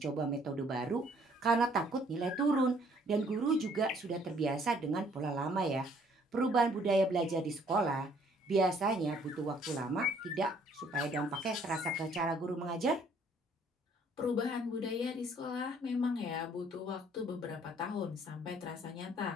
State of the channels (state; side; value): normal; both; correlation 0.62